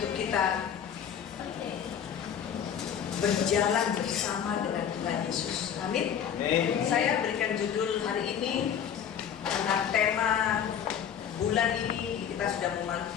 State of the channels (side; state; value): right; quieter; 8.5 dB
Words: kita berjalan bersama dengan Tuhan Yesus. Amin. Saya berikan judul hari ini karena tema bulan ini kita sudah